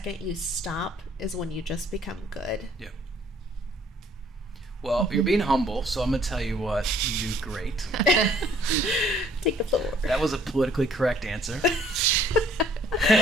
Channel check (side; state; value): both; normal; correlation 0.60